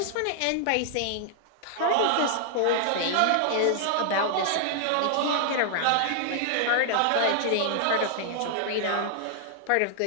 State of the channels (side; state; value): both; different; correlation 0.00